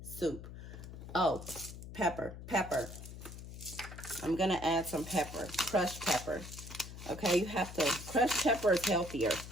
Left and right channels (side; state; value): left; noise; hum, 12 dB below the sound